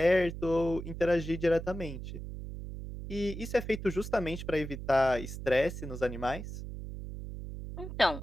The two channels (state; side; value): noise; right; hum, 8 dB below the sound